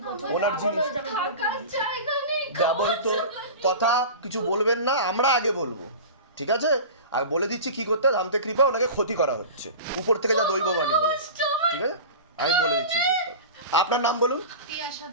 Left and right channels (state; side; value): inverted; both; correlation -0.33